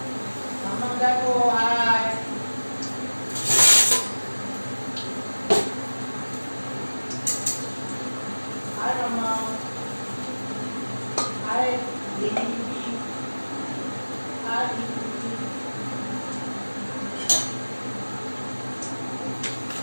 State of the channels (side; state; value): both; inverted; correlation -1.00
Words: দেখো আয় আয় মামা আয় দেখি আয়